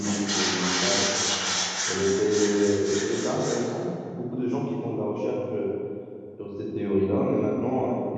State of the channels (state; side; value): identical; both; correlation 1.00